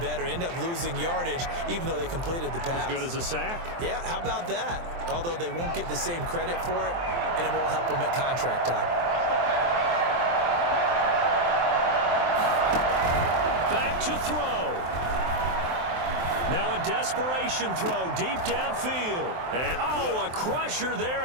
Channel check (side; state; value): left; late; 23 ms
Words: better. End up losing yardage, even though they completed the pass. As good as a sack. Yeah, how about that? Although they won't get the same credit for it, and it won't help them at contract time. Back to throw. Now a desperation throw deep downfield. And a crusher there